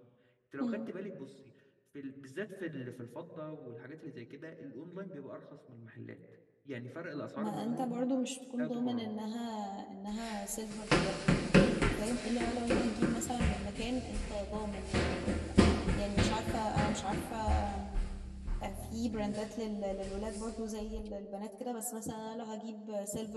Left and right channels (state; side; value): identical; both; correlation 1.00